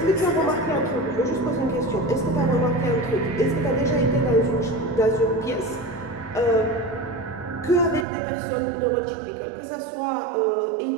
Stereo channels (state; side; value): drops out; left; at 8.1 s